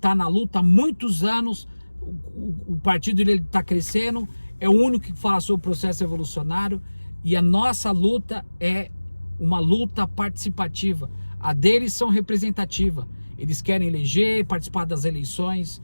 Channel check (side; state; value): both; inverted; correlation -1.00